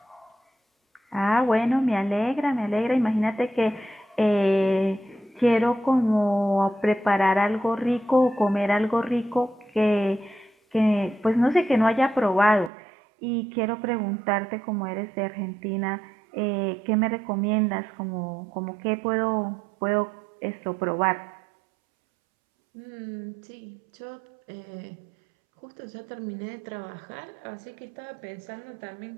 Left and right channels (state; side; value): drops out; left; at 12.7 s